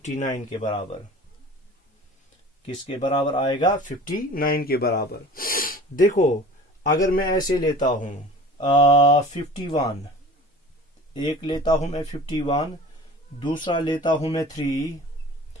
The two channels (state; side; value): normal; both; correlation 0.42